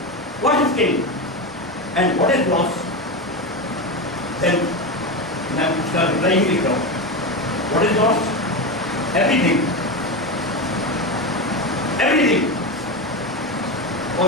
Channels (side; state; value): both; normal; correlation 0.17